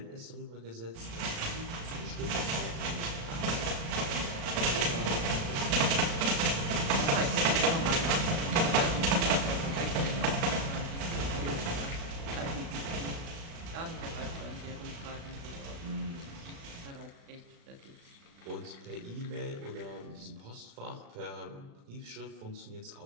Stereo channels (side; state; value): left; late; 36 ms